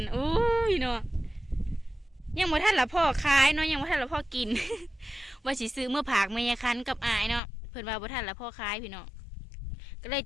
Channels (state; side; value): drops out; right; at 7.4 s